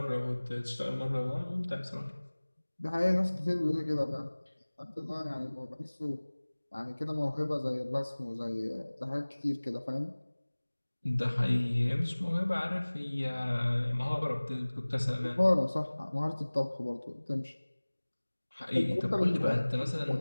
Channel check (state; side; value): inverted; both; correlation -1.00